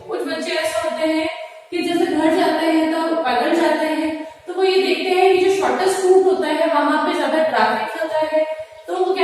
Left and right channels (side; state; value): both; identical; correlation 1.00